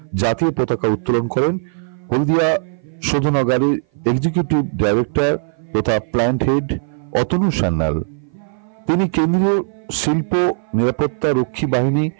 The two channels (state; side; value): silent; left; 57 dB below the other